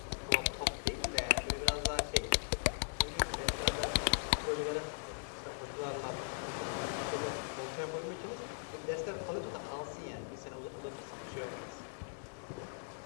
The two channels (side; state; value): right; silent; digital silence